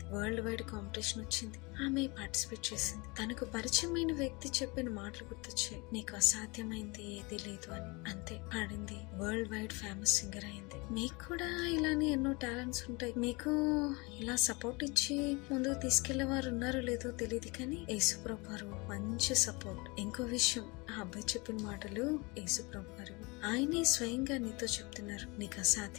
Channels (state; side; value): quieter; right; 27.0 dB